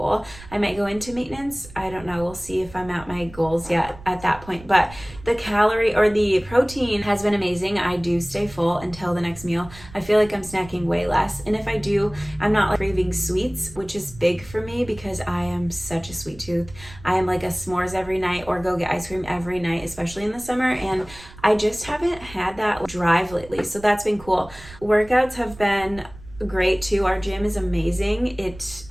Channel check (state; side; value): noise; right; rumble, 18 dB below the sound